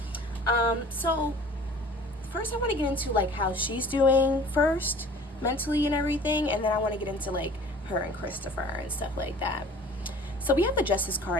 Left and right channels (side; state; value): both; normal; correlation 0.46